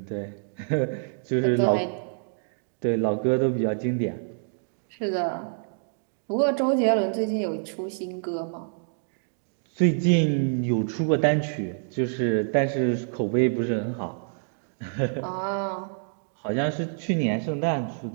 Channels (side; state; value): left; silent; digital silence